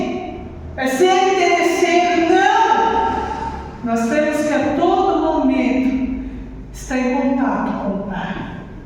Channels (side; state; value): both; identical; correlation 1.00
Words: É ser interesseiro, não! Nós temos que a todo momento estar em contato com o Pai.